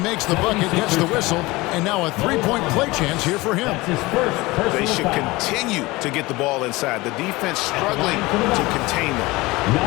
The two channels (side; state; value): right; quieter; 21.4 dB